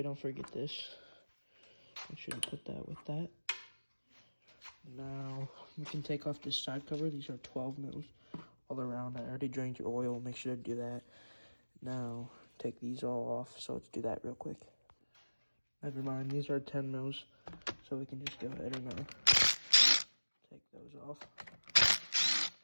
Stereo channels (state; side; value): inverted; both; correlation -1.00